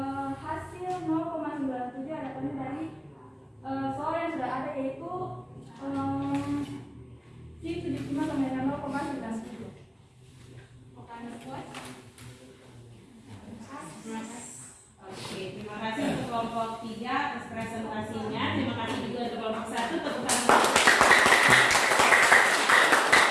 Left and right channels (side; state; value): both; identical; correlation 1.00